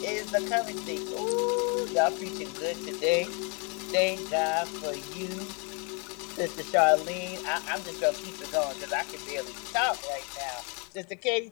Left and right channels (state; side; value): quieter; right; 34.9 dB